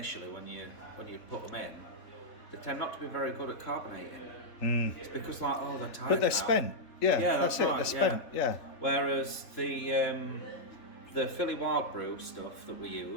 when you put them in, they tend not to be very good at carbonating. It's because they're tired. But they're now. spent. Yeah, that's it. right, They're spent. Yeah. Whereas the Philly Wild Brew stuff that we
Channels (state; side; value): late; right; 3.8 ms